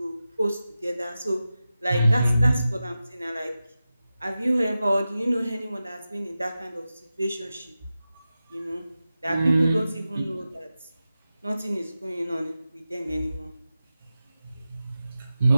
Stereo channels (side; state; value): both; inverted; correlation -0.93